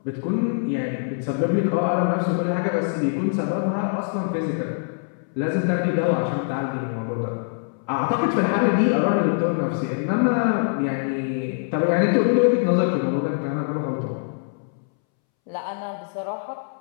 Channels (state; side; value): silent; right; 63 dB below the other